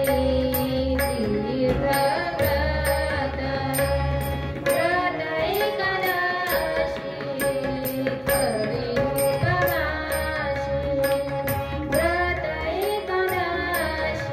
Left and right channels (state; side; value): identical; both; correlation 1.00